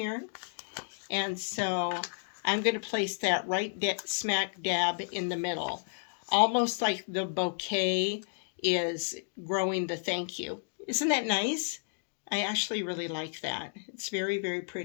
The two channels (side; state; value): right; silent; digital silence